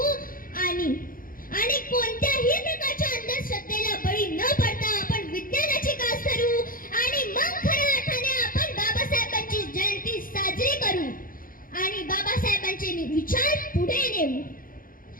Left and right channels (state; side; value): late; right; 0.41 ms